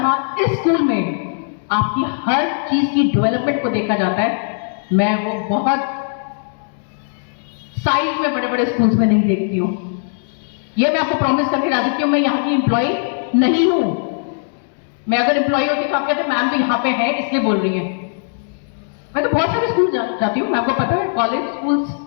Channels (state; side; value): silent; right; digital silence